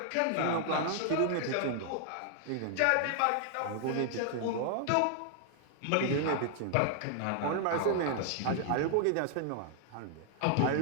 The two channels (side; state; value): both; different; correlation 0.00